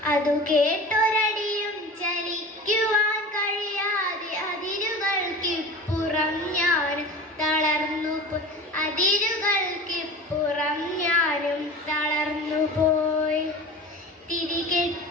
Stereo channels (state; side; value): normal; both; correlation 0.36